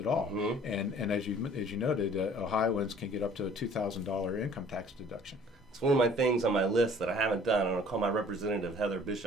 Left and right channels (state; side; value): normal; both; correlation 0.53